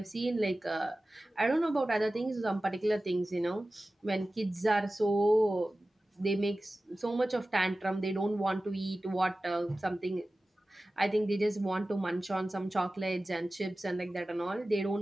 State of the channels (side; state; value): both; normal; correlation 0.96